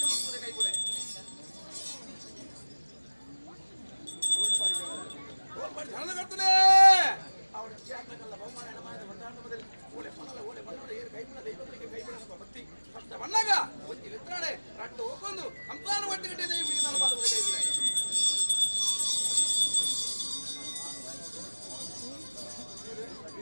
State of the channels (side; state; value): both; inverted; correlation -1.00